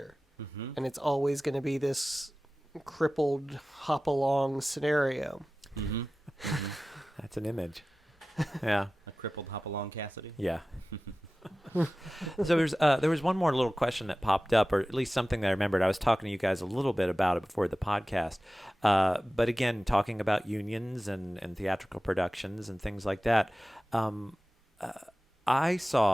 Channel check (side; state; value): both; normal; correlation 0.96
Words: And it's always going to be this crippled hop along scenario. That's an image. Yeah. A crippled Hopalong Cassidy. Yeah. So there was one more little question that popped up, or at least something that I remembered. I was talking to you guys a little bit about it before the podcast. But again, talking about unions and theatrical productions and things like that. I